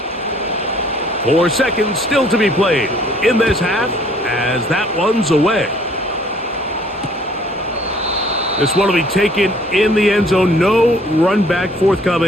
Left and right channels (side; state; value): both; normal; correlation 0.58